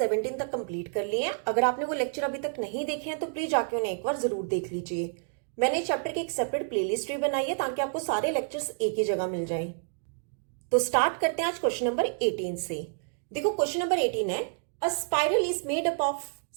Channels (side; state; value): left; silent; digital silence